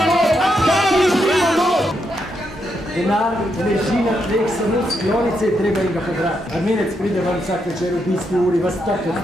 Denar leži na tleh, samo sklonice je treba in ga pobrati. Armenec pride vam vsak večer v bisti uri, vas tako od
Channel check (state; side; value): normal; both; correlation 0.81